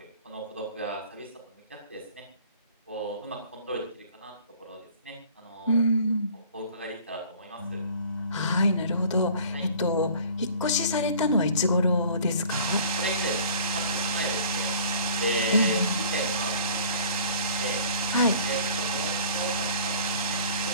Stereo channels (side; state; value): both; inverted; correlation -0.48